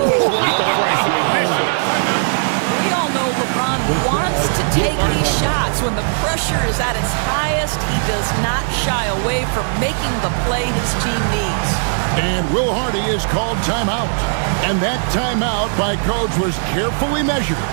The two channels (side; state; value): left; silent; 61 dB below the other